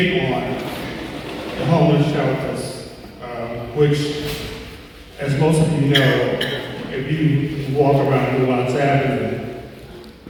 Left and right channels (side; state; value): both; identical; correlation 1.00